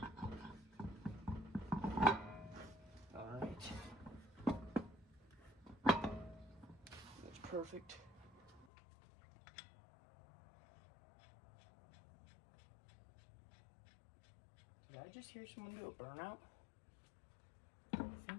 Perfect. Did I just hear someone do a burnout? I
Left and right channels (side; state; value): right; drops out; at 8.7 s